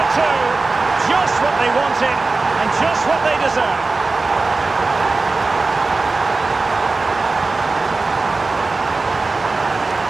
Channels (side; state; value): left; quieter; 3.7 dB